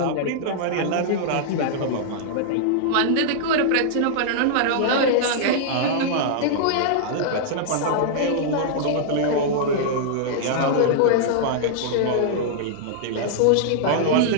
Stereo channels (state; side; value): different; both; correlation -0.01